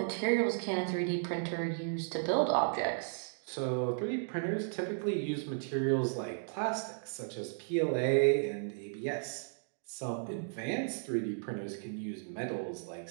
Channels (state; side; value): silent; left; digital silence